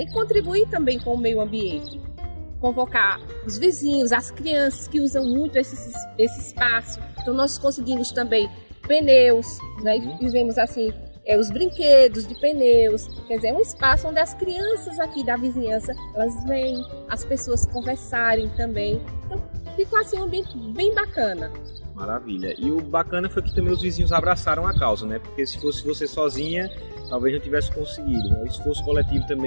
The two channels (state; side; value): inverted; both; correlation -1.00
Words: E contribuir também com o meio ambiente. Convocar os vizinhos, as crianças que usam muito esse espaço. Então nós conseguimos também pneus, né? E fizemos assim, os brinquedos de pneus. Quer dizer, é um espaço onde as crianças aqui da vizinhança, elas vêm, as pessoas conversarem também. Então ficou assim um ambiente bem bacana. Maravilha. E o bacana foi que também os vizinhos abraçaram a causa, né? Porque se fosse você sozinha, talvez não tivesse conseguido. O esforço coletivo